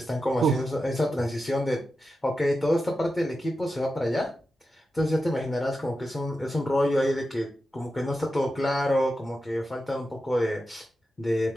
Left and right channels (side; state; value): both; normal; correlation 0.91